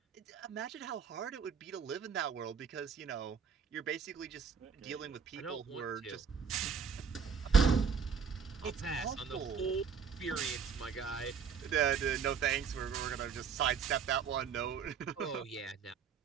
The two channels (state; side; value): quieter; left; 6.2 dB